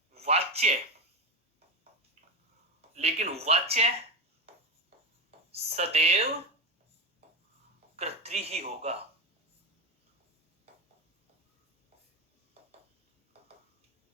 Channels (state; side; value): normal; both; correlation 0.18